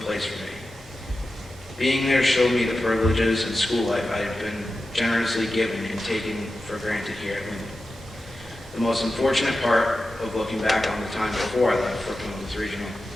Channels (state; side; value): normal; both; correlation 0.92